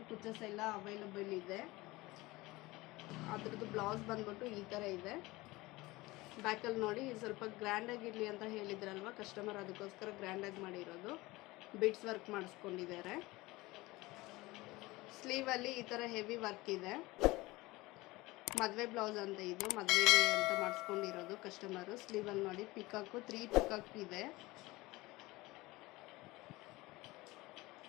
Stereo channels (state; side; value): quieter; right; 20.8 dB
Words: ಕುಚ್ಚಸ್ ಎಲ್ಲ ಅವೈಲಬಲ್ ಇದೆ. ಅದ್ರದ್ದು ಬ್ಲೌಸ್ ಬಂದ್ಬಿಟ್ಟು ಈ ಥರ ಇದೆ. ಬ್ಯಾಕಲ್ಲಿ ನೋಡಿ, ಸ್ವಲ್ಪ ಗ್ರ್ಯಾಂಡಾಗಿರಲಿ ಅಂತ ಹೇಳಿದ್ರಲ್ವ ಕಸ್ಟಮರ್, ಅದಕ್ಕೋಸ್ಕರ ಗ್ರ್ಯಾಂಡಾಗಿ ಮಾಡಿರೋದು. ಬಿಡ್ಸ್ ವರ್ಕ್ ಮಾಡಿಸ್ಕೊಂಡಿದ್ದಾರೆ. ಸ್ಲೀವಲ್ಲಿ ಈ ಥರ ಹೆವಿ ವರ್ಕ್ ಇದೆ. ಮದುವೆ ಬ್ಲೌಸ್ ಅಂತ ಇದು, ಮದುವೆಗೆ ಅಂತ ಮಾಡಿಸ್ಕೊಂಡಿರೋದು ಕಸ್ಟಮರು. ಸ್ಲೀವಲ್ಲಿ ನೋಡಿ ಪಿಕಾಕು 3 ಪಿಕಾಕ್ ಇದೆ.